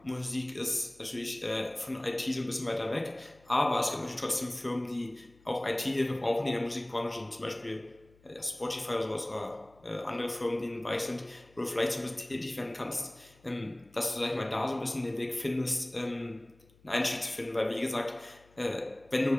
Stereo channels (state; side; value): noise; left; hum, 28 dB below the sound